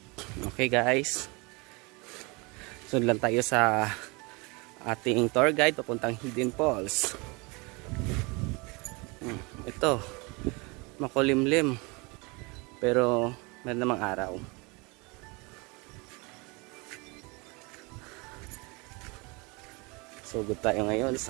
Okay guys. Sunod lang tayo sa ating tour guide papuntang Hidden Falls. Ito, makulimlim. Pero meron namang araw. So good tayo ngayon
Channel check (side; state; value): left; quieter; 27.7 dB